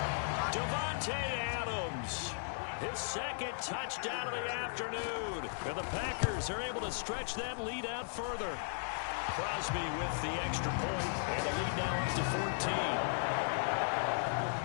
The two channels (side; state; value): right; silent; digital silence